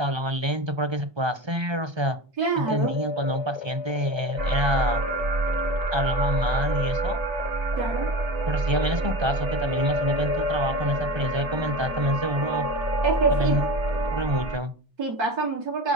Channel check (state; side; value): late; left; 1.3 ms